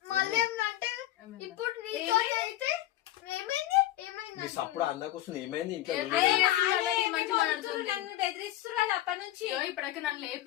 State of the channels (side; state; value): right; quieter; 14.3 dB